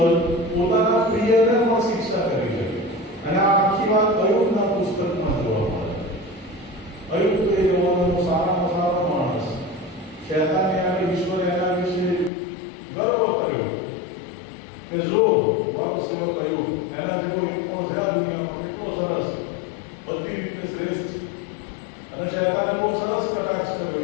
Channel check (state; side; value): drops out; right; at 12.3 s